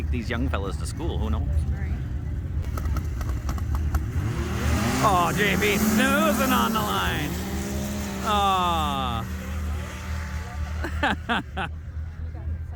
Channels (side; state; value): both; identical; correlation 1.00